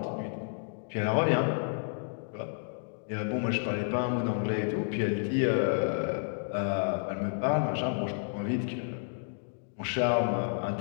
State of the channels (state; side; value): silent; right; digital silence